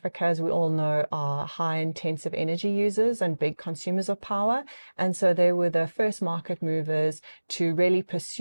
as we all know, are high intensive energy users and big consumers of power. And so they were the first market movers to really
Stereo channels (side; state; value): both; inverted; correlation -1.00